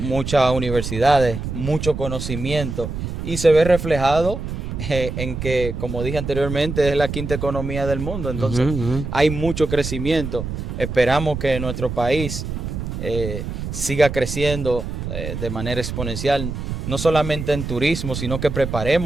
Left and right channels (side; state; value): right; noise; rumble, 5 dB below the sound